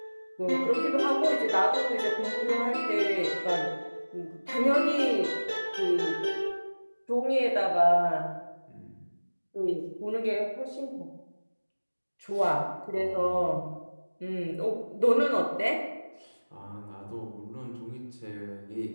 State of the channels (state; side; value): inverted; both; correlation -1.00